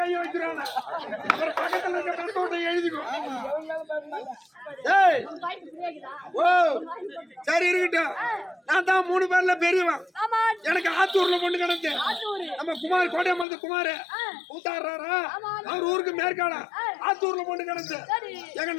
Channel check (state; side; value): drops out; right; at 13.5 s